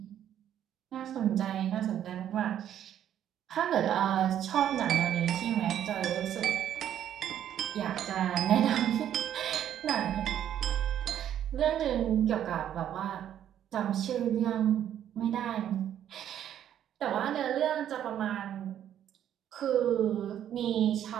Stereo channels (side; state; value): left; quieter; 10.4 dB